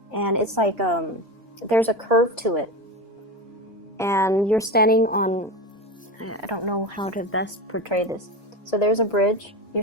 and it's like there's a curve to it, and you're standing on. I don't know how to best portray this. So there's a bridge.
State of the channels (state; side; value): normal; both; correlation 0.23